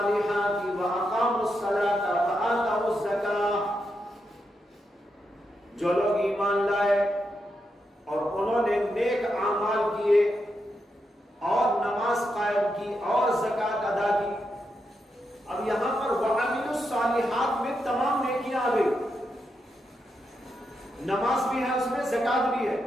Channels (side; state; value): both; normal; correlation 0.84